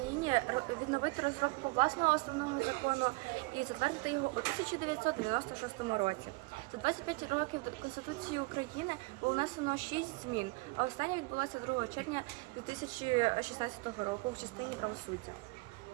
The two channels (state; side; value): quieter; left; 26.5 dB